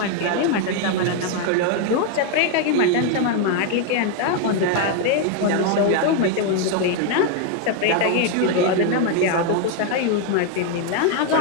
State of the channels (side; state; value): both; different; correlation 0.01